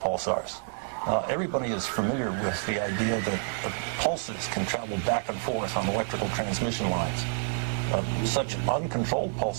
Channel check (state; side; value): silent; left; digital silence